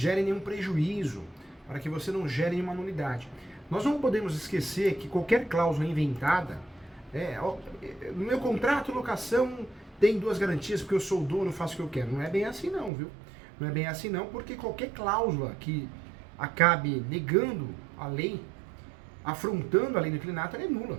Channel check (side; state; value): left; drops out; at 12.9 s